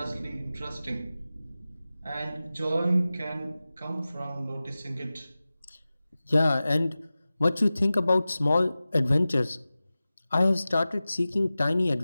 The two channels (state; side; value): inverted; both; correlation -0.96